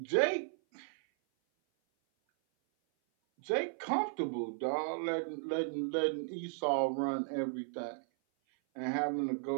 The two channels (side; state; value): left; silent; 54 dB below the other